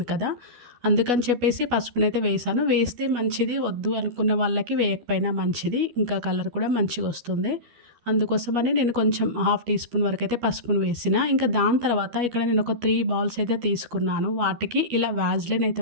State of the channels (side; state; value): left; late; 12 ms